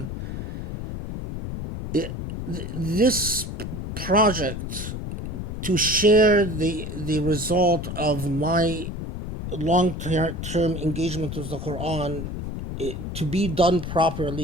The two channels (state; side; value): noise; left; rumble, 6 dB below the sound